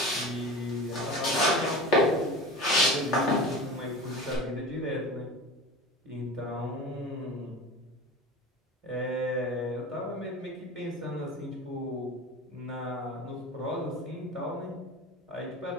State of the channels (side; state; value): both; normal; correlation 0.32